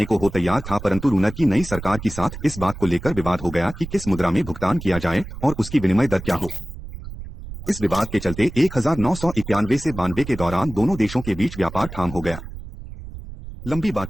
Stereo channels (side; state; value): right; noise; rumble, 12 dB below the sound